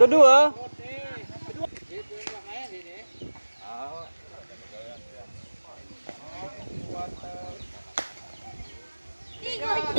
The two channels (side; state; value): both; inverted; correlation -1.00